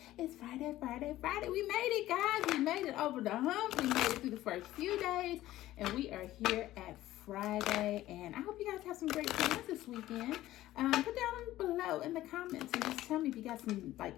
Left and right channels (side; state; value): right; quieter; 15.1 dB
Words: made it, guys. We made it over the hump. We made it through the first few days, and we are here at Friday. And I hope you guys have some great plans this weekend. Put down below in the comments and just tell me if you got some like